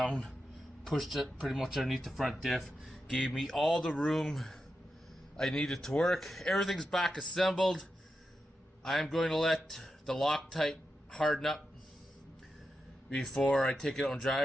pushed it pretty much underneath the front diff, gave me all the room I needed to work. Everything's back assembled. I'm going to let the Loctite harden up before I take it out and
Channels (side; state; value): both; normal; correlation 0.88